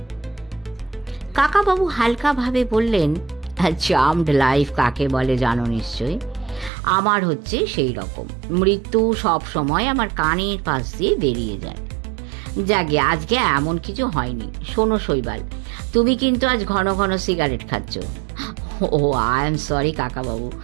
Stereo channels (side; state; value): left; drops out; at 6.7 s